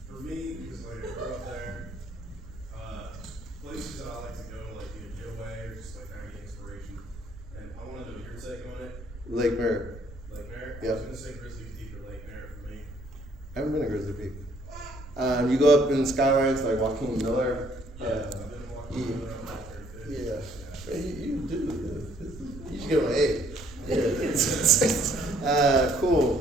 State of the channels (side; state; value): right; noise; rumble, 16 dB below the sound